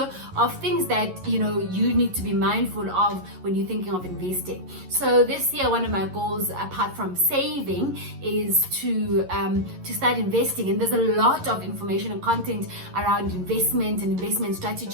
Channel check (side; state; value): left; late; 11 ms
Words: of things that you need to be mindful of when you're thinking of investing. So this year, one of my goals, apart from saving, is to start investing. And there's a lot of information and content around investment and investment